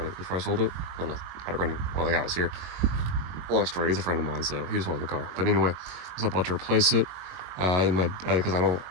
before I sold it. I had it running while the guy was here. Long story, he's a friend of mine, so he just wanted the car. But anyway, I was about to replace it because I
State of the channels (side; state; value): left; late; 22 ms